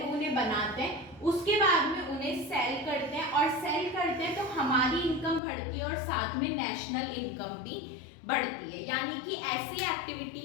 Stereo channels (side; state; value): right; drops out; at 5.4 s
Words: उन्हें बनाते हैं, उसके बाद में उन्हें सेल करते हैं और सेल करते हैं तो हमारी इनकम बढ़ती है और साथ में नेशनल इनकम भी बढ़ती है. यानी कि ऐसी